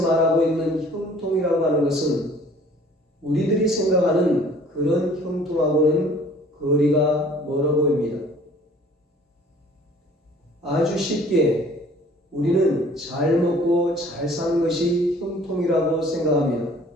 말하고 있는 형통이라고 하는 것은 우리들이 생각하는 그런 형통하고는 거리가 멀어 보입니다. 아주 쉽게 우리는 잘 먹고 잘 사는 것이 형통이라고 생각합니다.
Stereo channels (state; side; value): normal; both; correlation 0.53